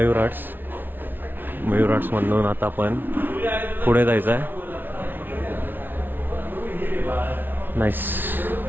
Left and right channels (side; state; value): left; late; 0.095 ms